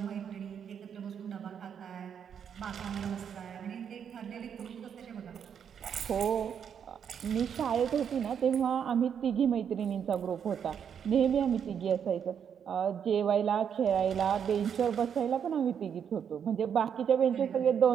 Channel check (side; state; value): left; quieter; 7.9 dB